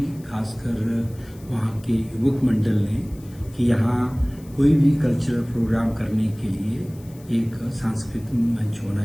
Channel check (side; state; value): left; noise; hiss, 25 dB below the sound